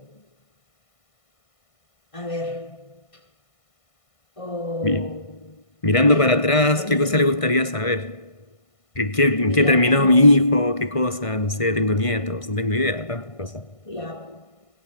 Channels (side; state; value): right; late; 1.5 ms